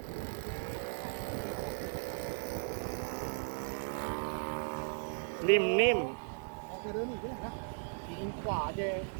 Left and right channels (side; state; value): left; silent; 53 dB below the other